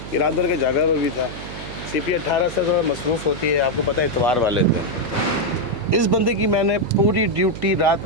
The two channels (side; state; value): right; noise; hum, 12 dB below the sound